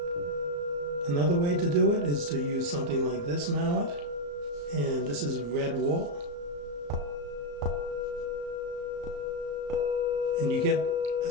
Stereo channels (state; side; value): late; left; 34 ms